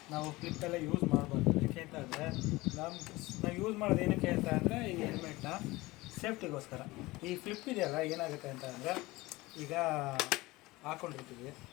ನಾವು ಕ್ಲಿಪ್ಪೆಲ್ಲ ಯೂಸ್ ಮಾಡ್ಬೋದು. ಏನಕ್ಕೆ ಅಂತ ಅಂದರೆ ನಾವು ಯೂಸ್ ಮಾಡೋದು ಏನಕ್ಕೆ ಅಂತ ಅಂದರೆ ಈ ಹೆಲ್ಮೆಟ್ನ ಸೇಫ್ಟಿಗೋಸ್ಕರ. ಈ ಫ್ಲಿಪ್ ಇದೆಯಲ್ಲ, ಏನಾಗುತ್ತೆ ಅಂತ ಅಂದರೆ ಈಗ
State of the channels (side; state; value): right; quieter; 20.6 dB